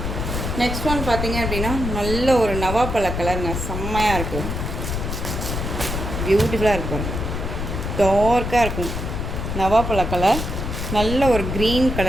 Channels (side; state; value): left; noise; rumble, 3 dB below the sound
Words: நெக்ஸ்ட் ஒன் பார்த்தீங்க அப்படின்னா நல்ல ஒரு நவாப்பழ கலருங்க, செம்மையாக இருக்குது. பியூட்டிஃபுல்லாக இருக்கும். டார்க்காக இருக்கும். நவாப்பழ கலர், நல்ல ஒரு க்ரீன்